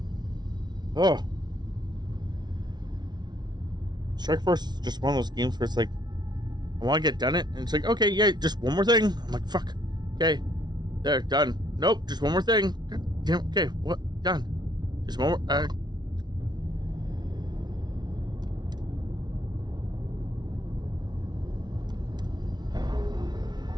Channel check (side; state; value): left; late; 0.20 ms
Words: Oh. Strike Force is just one of those games where it's like, I want to get done it, and it's like, okay, yeah, just one more thing. I'm like, fuck. Okay. There, done. Nope, just one more thing. God damn, okay, what? Done. Just one more.